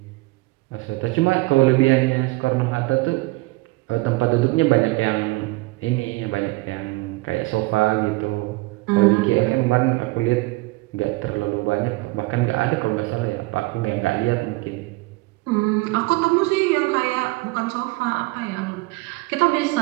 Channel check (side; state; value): left; quieter; 22.8 dB